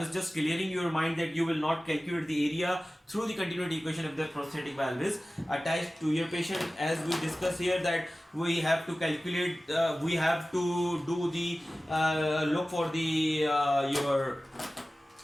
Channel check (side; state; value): both; normal; correlation 0.96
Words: just clearing your mind that you will not calculate the area through the continuity equation if the prosthetic valve is attached to your patient. As we discuss here, that we have to calculate, we have to do the look for the your